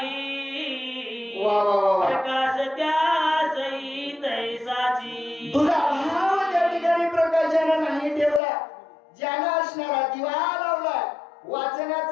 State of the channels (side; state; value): right; drops out; at 8.4 s